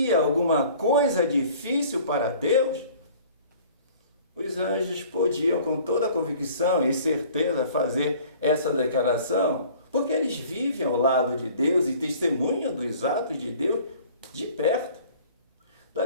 alguma coisa difícil para Deus? Os anjos podiam, com toda convicção e certeza, fazer essa declaração, porque eles vivem ao lado de Deus e testemunham dos atos de Deus de perto. Da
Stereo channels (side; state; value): both; inverted; correlation -0.50